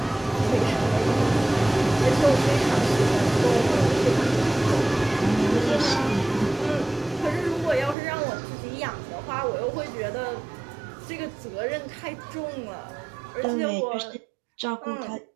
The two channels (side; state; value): left; drops out; at 8.0 s